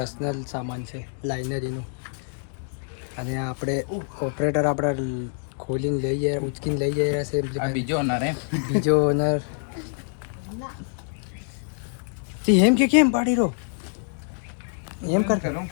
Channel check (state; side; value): silent; right; 61 dB below the other